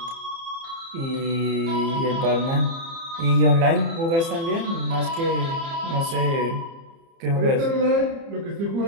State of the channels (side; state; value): left; late; 30 ms